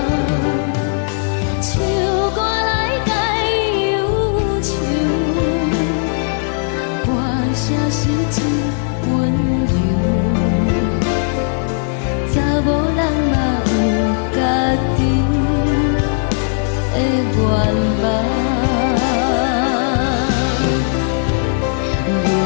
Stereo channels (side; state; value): right; silent; digital silence